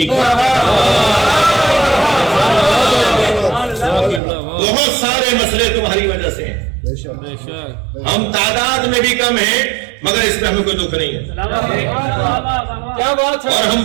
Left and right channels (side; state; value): left; drops out; at 4.2 s